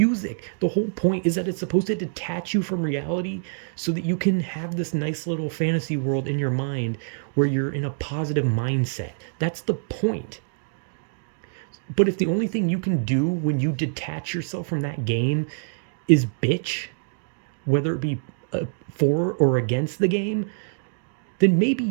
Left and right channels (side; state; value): left; silent; digital silence